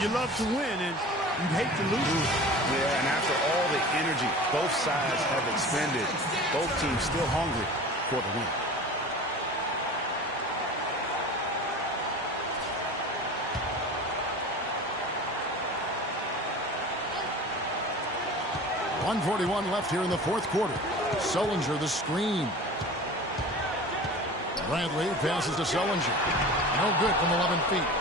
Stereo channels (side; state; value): both; normal; correlation 0.37